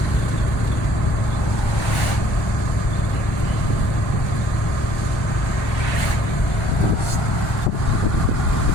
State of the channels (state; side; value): normal; both; correlation 0.56